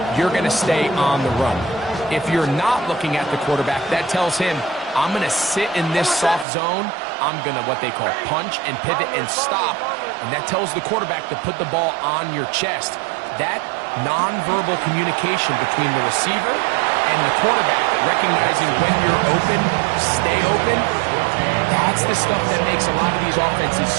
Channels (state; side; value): drops out; left; at 6.5 s